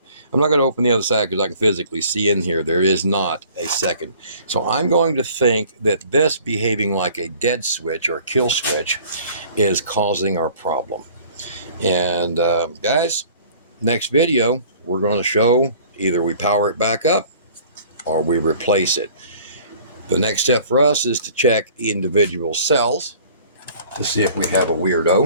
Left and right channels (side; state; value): both; inverted; correlation -0.51